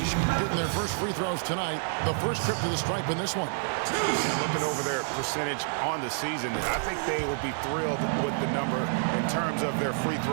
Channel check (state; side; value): silent; left; digital silence